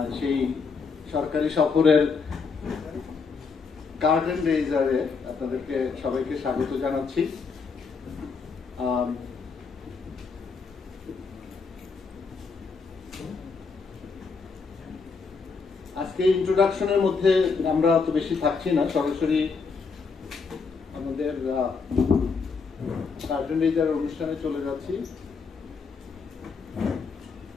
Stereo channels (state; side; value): quieter; right; 5.0 dB